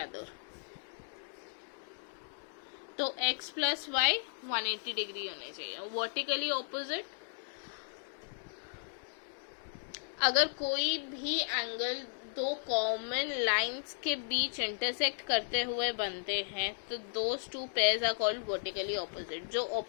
other. तो x प्लस वाई 180 डिग्री होने चाहिए, वर्टिकली ऑपोजिट। अगर कोई भी angle दो common lines के बीच intersect करते हुए बनते हैं तो those two pairs are called vertically opposite. जो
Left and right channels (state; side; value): silent; right; digital silence